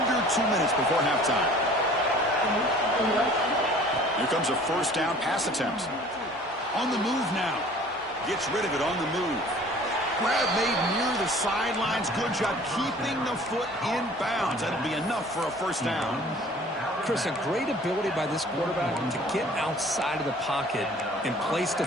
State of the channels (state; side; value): normal; both; correlation 0.49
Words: 2 minutes before halftime. Here comes a 1st down pass attempt. On the move now. Gets rid of it on the move. Grab made near the sidelines. Good job keeping the foot in bounds. That'll be enough for a 1st down. Chris, a great ability by this quarterback to get outside of the pocket and place the